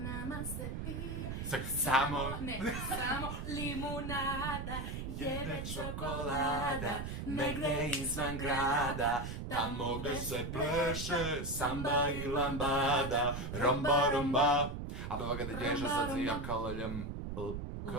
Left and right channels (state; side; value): noise; right; rumble, 5 dB below the sound